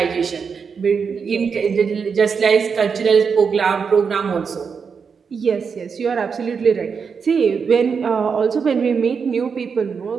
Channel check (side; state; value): left; quieter; 5.9 dB